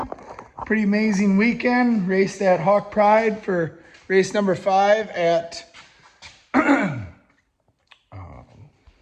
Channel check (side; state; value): both; identical; correlation 1.00